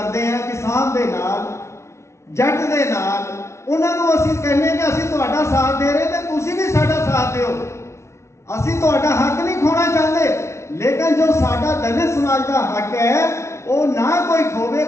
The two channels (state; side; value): late; right; 0.13 ms